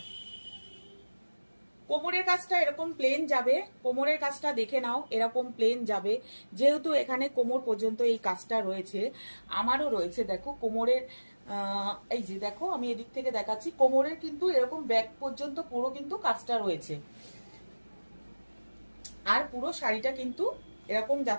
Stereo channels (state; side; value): inverted; both; correlation -1.00